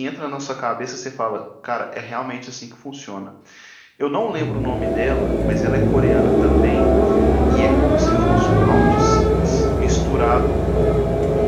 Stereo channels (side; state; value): both; identical; correlation 1.00